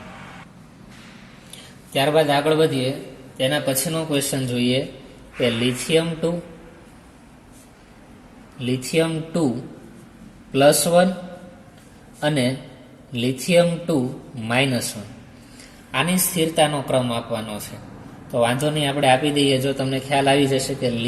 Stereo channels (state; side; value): identical; both; correlation 1.00